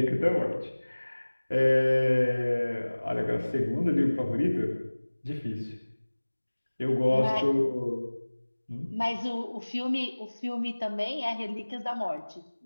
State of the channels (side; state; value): both; inverted; correlation -1.00